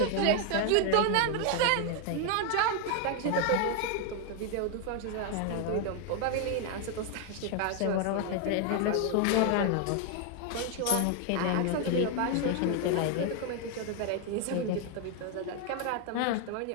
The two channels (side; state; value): both; different; correlation 0.01